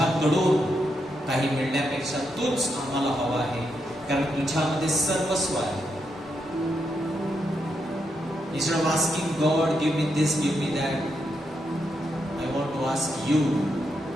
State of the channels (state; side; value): normal; both; correlation 0.82